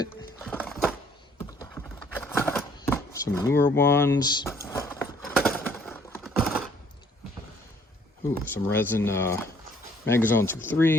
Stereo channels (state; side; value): normal; both; correlation 0.61